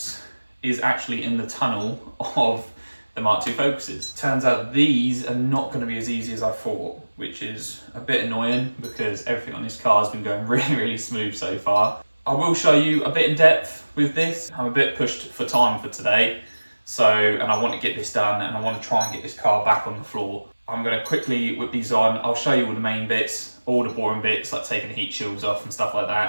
is actually in the tunnel of the Mark II Focuses. Turns out these are not going to be as easy as I thought, which is a bit annoying because everything on this car has been going really smooth so far. I will show you a bit in depth with this. I'm a bit pushed for time for today, and I want to get this done and I want to try and get this car back on the floor. I'm going to quickly whip these on. I'll show you all the main bits, all the boring bits like taking the heat shields off and stuff like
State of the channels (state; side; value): inverted; both; correlation -1.00